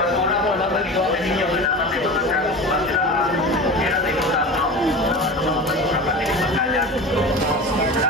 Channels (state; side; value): normal; both; correlation 0.31